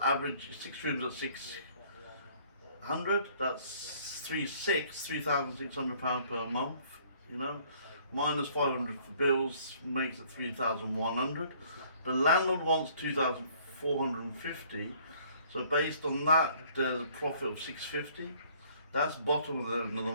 average 6 rooms at 600, that's £3,600 per month, you know, minus 500 for bills makes it 3,100. The landlord wants 2,450. So based on that, there's a profit of 650. That's bottom of the end of the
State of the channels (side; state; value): both; inverted; correlation -0.59